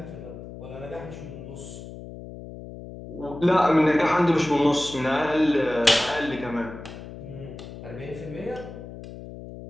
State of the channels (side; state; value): left; noise; hum, 13 dB below the sound